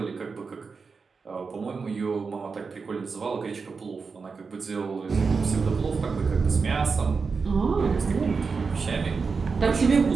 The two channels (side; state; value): left; quieter; 4.9 dB